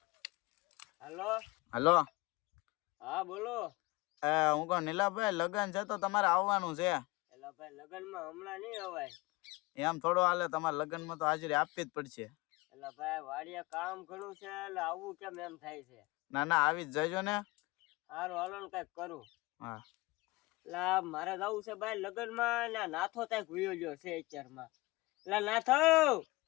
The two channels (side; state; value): right; quieter; 21.9 dB